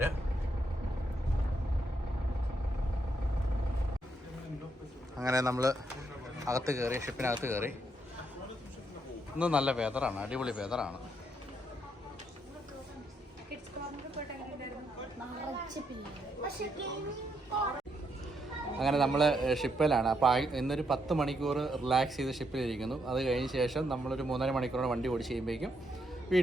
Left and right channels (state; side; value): normal; both; correlation 0.77